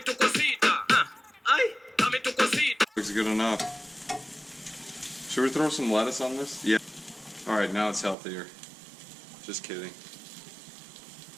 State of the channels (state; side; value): drops out; left; at 8.2 s